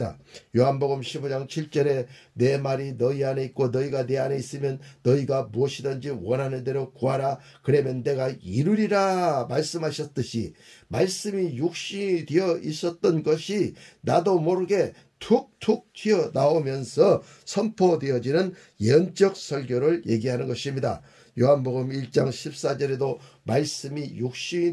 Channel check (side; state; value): both; identical; correlation 1.00